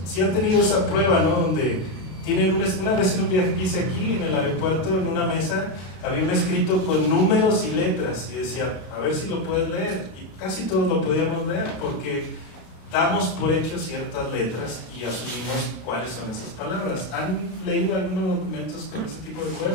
Si han tenido esa prueba, ¿no? Donde tienen una vez en un viaje que hice aquí en el aeropuerto, en una mesa, había un escrito con números y letras y decía, a ver si lo puedes leer. Y casi todos lo podíamos leer porque damos por hecho ciertas letras y asumimos cuáles son esas palabras. ¿Han leído algunos documentos con ese tipo de juego?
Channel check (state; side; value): late; right; 32 ms